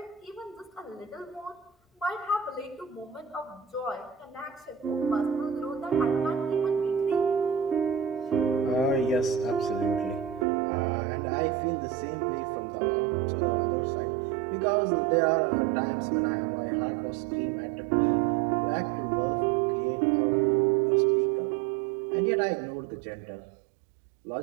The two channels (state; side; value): drops out; left; at 10.5 s